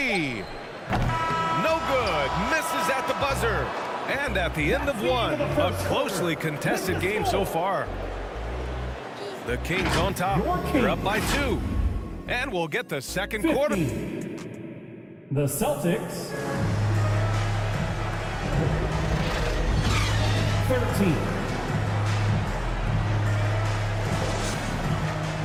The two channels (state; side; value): identical; both; correlation 1.00